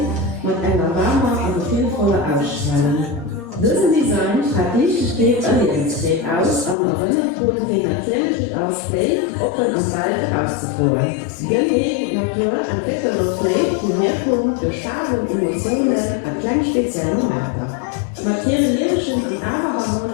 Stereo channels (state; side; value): drops out; right; at 6.8 s